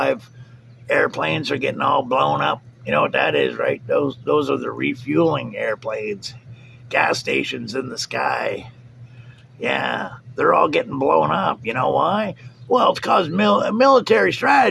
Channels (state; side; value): identical; both; correlation 1.00